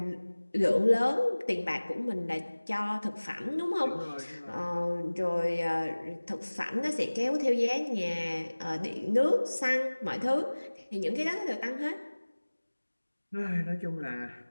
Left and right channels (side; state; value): both; inverted; correlation -1.00